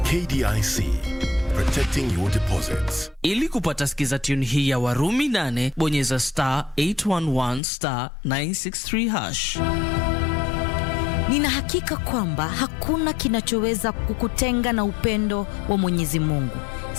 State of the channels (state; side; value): drops out; right; at 7.6 s